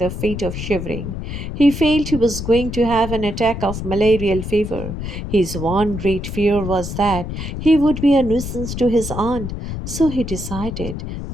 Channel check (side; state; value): left; noise; rumble, 6 dB below the sound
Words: a fit of shivering. He felt he was going to have an attack of malarial fever. His one great fear was that he would be a nuisance to his aunt, so he decided